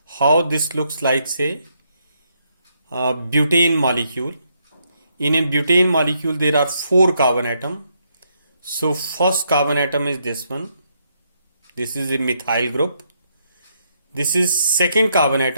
how this looks like, say, a butane molecule. In a butane molecule, there are 4 carbon atoms. So first carbon atom is this one. This is a methyl group. This is second carbon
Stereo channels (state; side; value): inverted; both; correlation -0.76